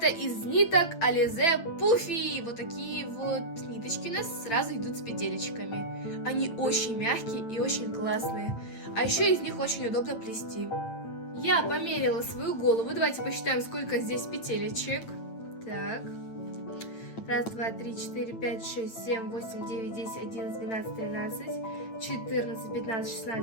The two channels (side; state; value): right; late; 8.9 ms